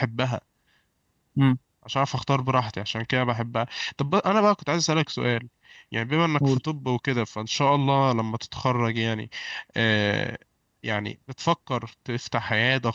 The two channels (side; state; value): both; identical; correlation 1.00